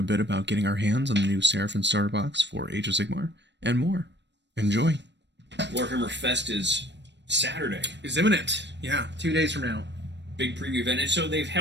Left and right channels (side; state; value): left; late; 0.51 ms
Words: bit about getting our hands on the new Seraphon starter box for Age of Sigmar, and more. Enjoy. WarhammerFest is Saturday. Is imminent. Yeah, 2 days from now. Big preview event. And so they've